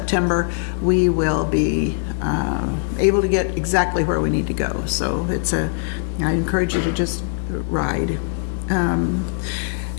we will be able to get exactly where we need to go. So I encourage you to just ride. And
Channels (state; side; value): silent; right; digital silence